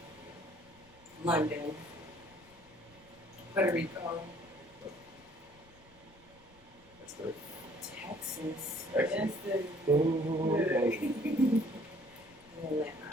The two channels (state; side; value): noise; left; rumble, 27 dB below the sound